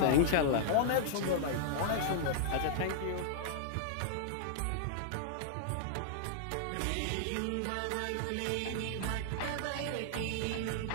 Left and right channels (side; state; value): both; different; correlation -0.01